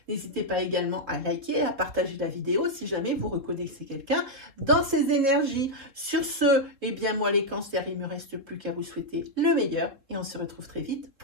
N'hésitez pas également à liker, à partager la vidéo si jamais vous reconnaissez quelqu'un dans ces énergies. Sur ce, eh bien moi les cancers, il ne me reste plus qu'à vous souhaiter le meilleur et on se retrouve très vite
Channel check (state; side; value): late; left; 3.6 ms